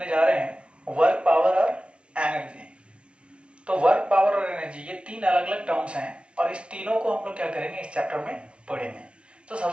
जा रहे हैं वर्क पावर और एनर्जी। तो वर्क पावर और एनर्जी ये तीन अलग अलग टर्म्स हैं और इस तीनों को हम लोग क्या करेंगे इस चैप्टर में पढ़ेंगे। तो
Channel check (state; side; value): late; left; 0.057 ms